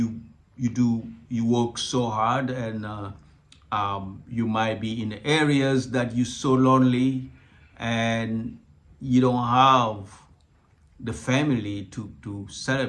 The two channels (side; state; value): both; identical; correlation 1.00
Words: work so hard and you might be in areas that you're so lonely and you don't have the family to